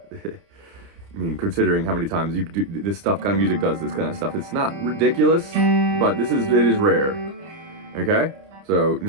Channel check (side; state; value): left; late; 30 ms